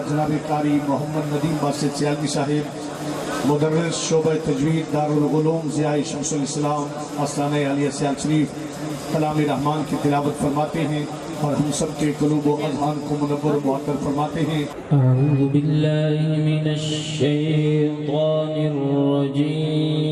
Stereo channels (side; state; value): both; identical; correlation 1.00